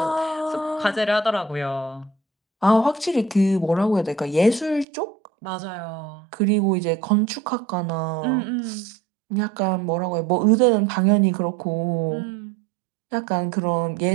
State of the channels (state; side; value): drops out; left; at 4.9 s